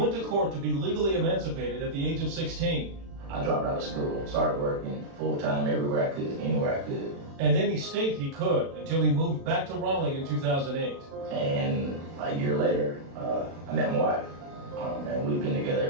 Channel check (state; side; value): late; left; 36 ms